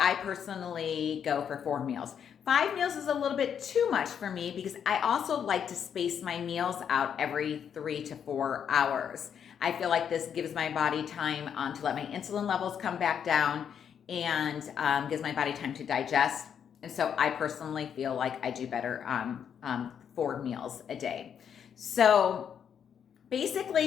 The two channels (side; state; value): right; quieter; 8.1 dB